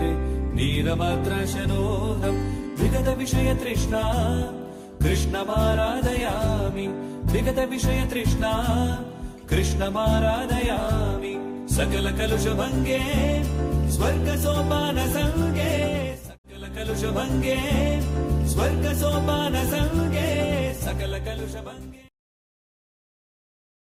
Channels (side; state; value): both; identical; correlation 1.00